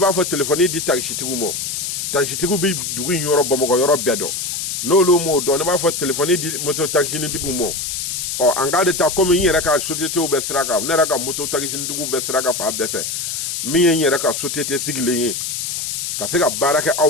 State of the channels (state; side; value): noise; left; hiss, 3 dB below the sound